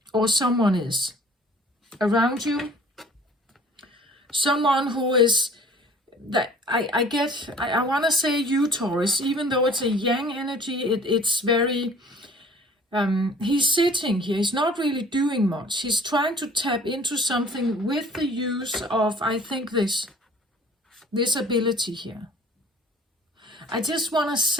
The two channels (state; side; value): normal; both; correlation 0.50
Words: Or someone is around you. Someone who is, that I want to say you, Taurus, even though it's a yang energy, it's very, he's sitting here, he's not really doing much. He's trying to tap into something with the use of, I think, this ability here. I just want to